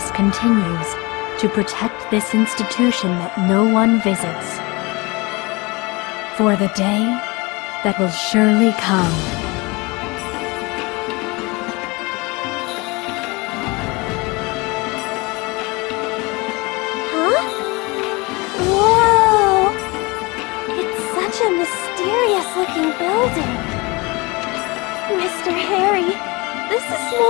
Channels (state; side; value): quieter; right; 25.5 dB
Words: continues to protect this institution that no one visits. For the day that will surely come. Huh? Whoa! It's such a mysterious-looking building. Mr. Harry, this is